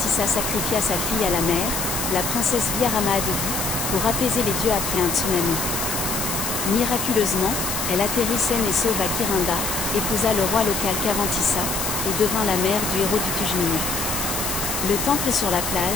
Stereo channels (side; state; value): left; noise; hiss, 2 dB below the sound